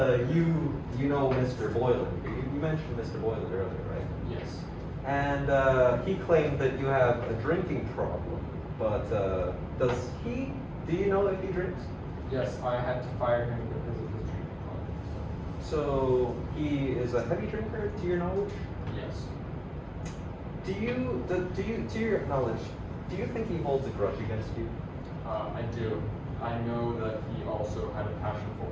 you know Mr. Boylan. You mentioned Mr. Boylan earlier, right? Yes. And he claimed that you have a drinking problem, but do you know if he drinks? Yes, I had to fire him because of his drinking problem. So he is a heavy drinker, to your knowledge? Yes. To your knowledge, do you think he holds a grudge against you? I do. I know that he also had a passion for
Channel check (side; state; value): both; identical; correlation 1.00